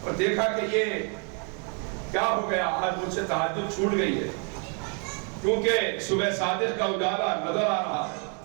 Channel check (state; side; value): quieter; left; 39.0 dB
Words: اور دیکھا کہ یہ کیا ہو گیا، آج مجھ سے تہجد چھوٹ گئی ہے، کیونکہ صبح صادق کا اجالا نظر آ رہا ہے۔